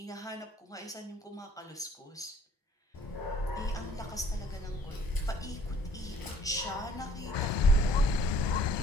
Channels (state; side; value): normal; both; correlation 0.57